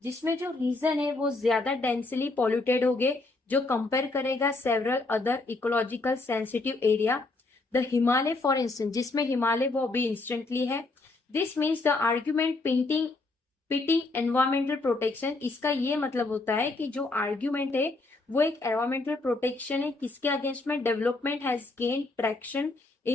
जिसमें जो रीजन है वो ज्यादा डेंसली पॉल्यूटेड हो गए जो कंपेयर करेगा several other ecological sensitive area. The Himalaya for instance, जिसमें हिमालय वो भी इंस्टेंटली है। This means the argument pitting environmental protection, इसका ये मतलब होता है कि जो आर्ग्यूमेंट है वो एक एनवायरमेंटल प्रोटेक्शन है, किसके अगेंस्ट में, development has gain traction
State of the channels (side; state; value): right; quieter; 3.3 dB